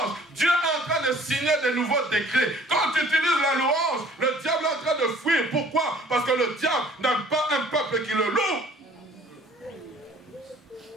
Dieu est en train de signer de nouveaux décrets. Quand tu utilises la louange, le diable est en train de fuir. Pourquoi? Parce que le diable n'a pas un peuple qui le loue.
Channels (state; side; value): normal; both; correlation 0.54